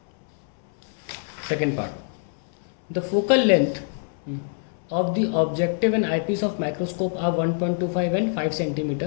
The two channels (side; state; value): right; silent; 62 dB below the other